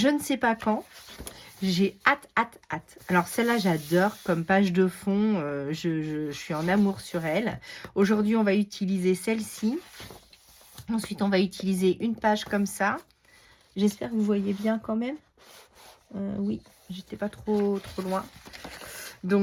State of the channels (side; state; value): both; identical; correlation 1.00